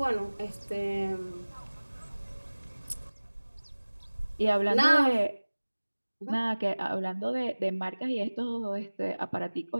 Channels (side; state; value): both; inverted; correlation -1.00